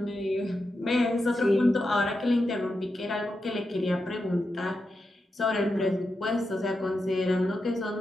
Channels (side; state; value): both; normal; correlation 0.88